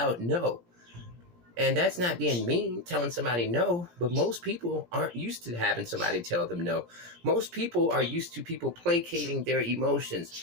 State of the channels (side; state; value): left; late; 17 ms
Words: no. And that's not being mean, telling somebody no, but most people aren't used to having somebody tell them no. Most people are used to people placating their